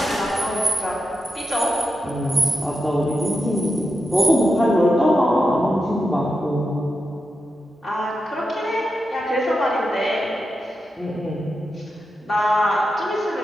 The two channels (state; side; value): normal; both; correlation 0.88